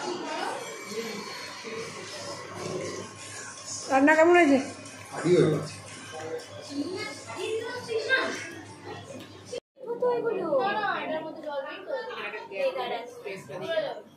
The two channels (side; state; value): both; identical; correlation 1.00